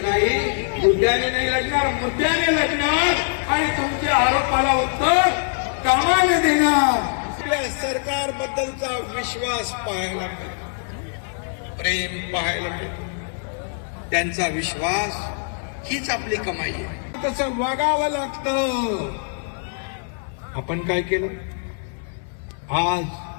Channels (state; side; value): silent; right; 62 dB below the other